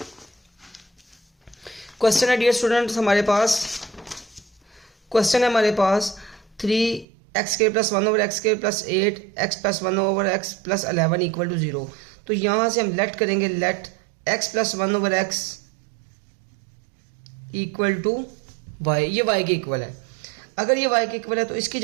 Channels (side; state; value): left; drops out; at 7.1 s